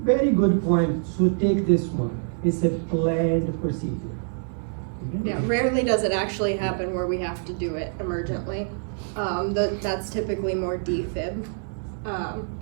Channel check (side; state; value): left; silent; 61 dB below the other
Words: Very good point. So take this one. It's a planned procedure. Okay? Yeah, rarely does it actually happen where we have to do it emergently. That's typically more defib.